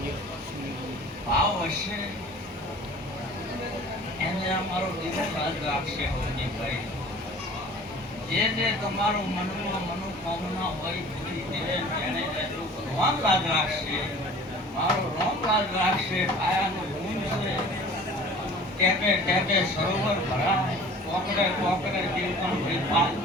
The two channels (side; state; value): both; normal; correlation 0.45